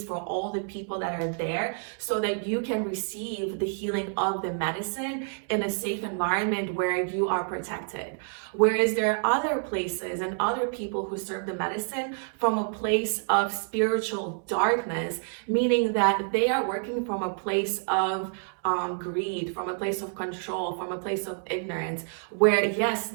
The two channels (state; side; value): silent; left; 59 dB below the other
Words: for all the people that are there so that you can receive the healing of the medicine in a safe environment where you are protected. Whereas there are other places and other people who serve the medicine from a place of spiritual darkness, meaning that they are working from a place of greed, from a place of control, from a place of ignorance, where yes,